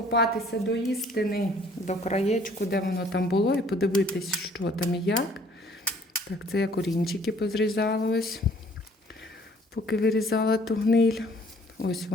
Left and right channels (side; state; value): both; normal; correlation 0.58